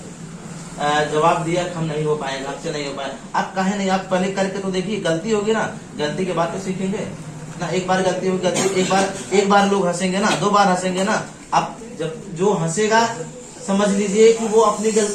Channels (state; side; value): identical; both; correlation 1.00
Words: जवाब दिया कि हम नहीं हो पाएंगे, हमसे नहीं हो पाए, आप कहे नहीं, आप पहले करके तो देखिए, गलती होगी ना, गलती के बाद तो सीखेंगे ना। एक बार गलती होगी, गलती एक बार लोग हंसेंगे ना, 2 बार हंसेंगे ना। आप जब जो हंसेगा समझ लीजिए कि वो